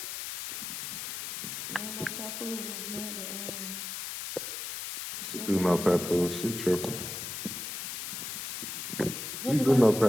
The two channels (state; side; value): noise; left; hiss, 6 dB below the sound